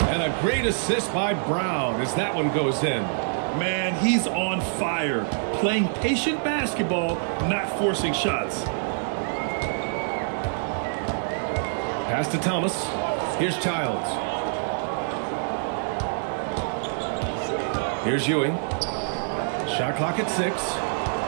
And a great assist by Brown as that one goes in. Man, he's on fire. Playing patient basketball, not forcing shots. Pass to Thomas. Here's Childs. Here's Ewing. Shot clock at 6.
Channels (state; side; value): silent; left; digital silence